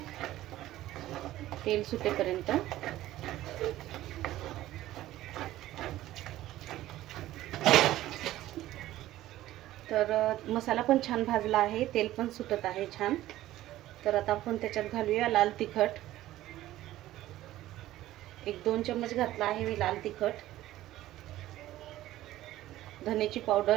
तेल सुटेपर्यंत। तर मसाला पण छान भाजला आहे, तेल पण सुटत आहे छान। तर आता आपण त्याच्यात घालूया लाल तिखट। 1-2 चम्मच घातला आहे मी लाल तिखट। धनेची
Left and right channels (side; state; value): left; quieter; 14.9 dB